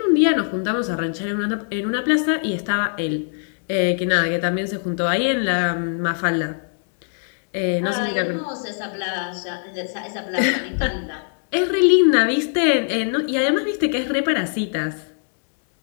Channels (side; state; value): right; silent; digital silence